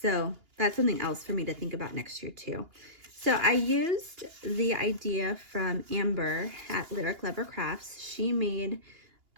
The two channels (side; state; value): left; late; 2.8 ms